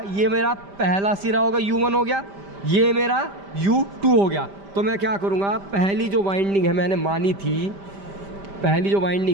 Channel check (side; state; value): left; late; 5.1 ms